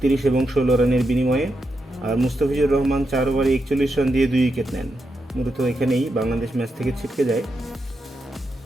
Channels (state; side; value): normal; both; correlation 0.85